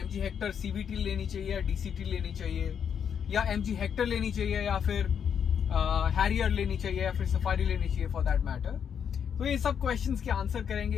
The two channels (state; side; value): quieter; right; 7.8 dB